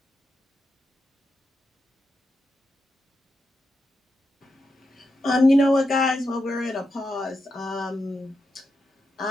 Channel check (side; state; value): both; normal; correlation 0.86